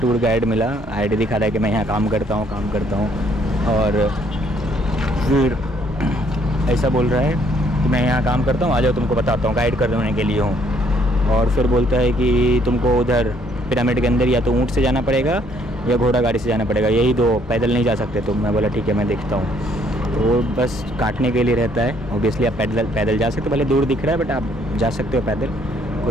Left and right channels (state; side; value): normal; both; correlation 0.66